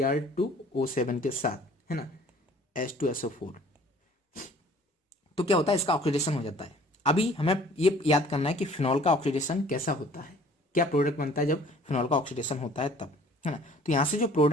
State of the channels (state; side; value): normal; both; correlation 0.52